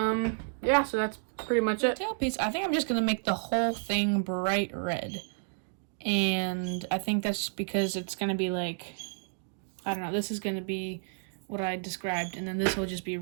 Yeah, so that's pretty much it. Tailpiece, I think I'm just gonna make the whole thing bright red. And I think that's because it's gonna be like, I don't know, this is gonna be what I described, and then this will just be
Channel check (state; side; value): silent; left; digital silence